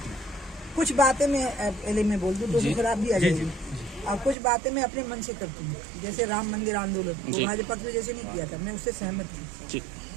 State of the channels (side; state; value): left; drops out; at 4.4 s